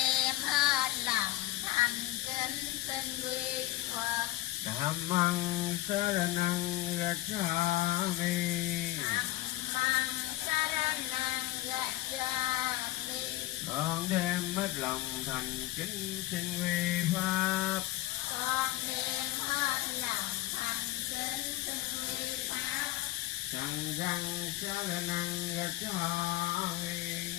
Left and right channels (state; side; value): quieter; right; 17.0 dB